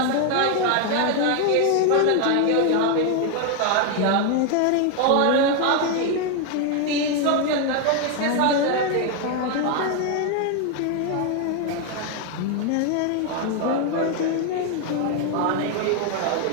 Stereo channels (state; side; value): different; both; correlation 0.01